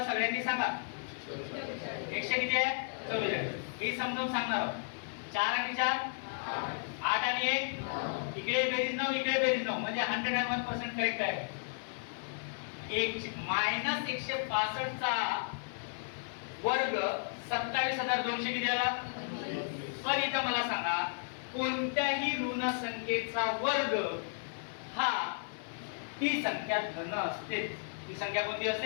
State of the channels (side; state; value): right; silent; 55 dB below the other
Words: सगळ्यांनी सांगा. 100 किती आहे? 44. मी समजावून सांगणार आहोत. 4 आणि 4 8 आणि 1 इकडे बेरीज 9 इकडे बेरीज 9 म्हणजे 101% करेक्ट आहे. मायनस 165 चा वर्ग 27,200 किती आला? पण इथं मला सांगा, कोणत्याही ऋण संख्येचा वर्ग हा ती संख्या धन असते. ती संख्या कोणती